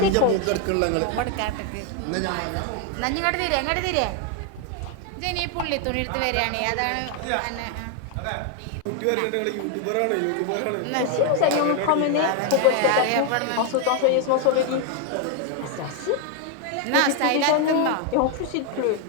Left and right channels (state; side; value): different; both; correlation 0.01